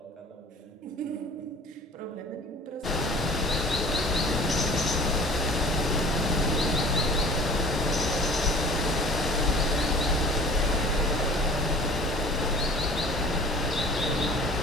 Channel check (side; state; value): both; normal; correlation 0.45